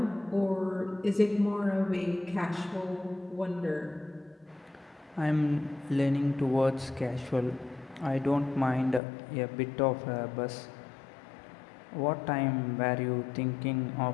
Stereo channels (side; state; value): right; drops out; at 9.0 s